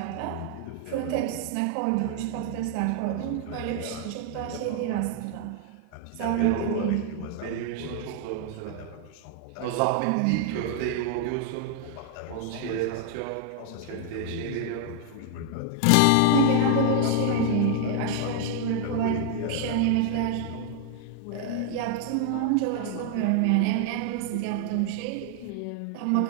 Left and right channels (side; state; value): both; different; correlation 0.00